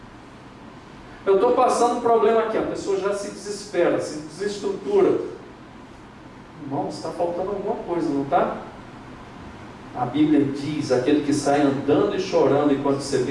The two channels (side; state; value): both; identical; correlation 1.00